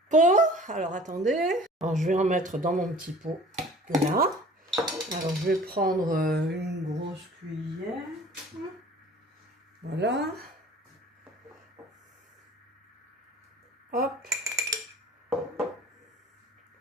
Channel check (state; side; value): normal; both; correlation 0.47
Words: pot. Alors, attendez. Alors, je vais en mettre dans mon petit pot, là. Alors, je vais prendre une grosse cuillère. Voilà. Hop.